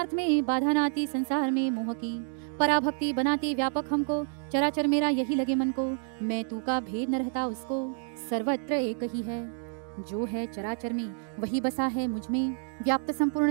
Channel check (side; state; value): left; silent; 57 dB below the other